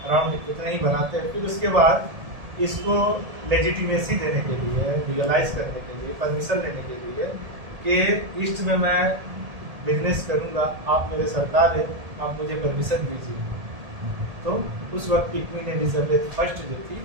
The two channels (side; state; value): left; late; 1.7 ms